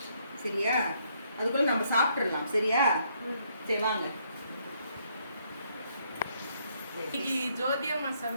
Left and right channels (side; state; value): both; inverted; correlation -0.71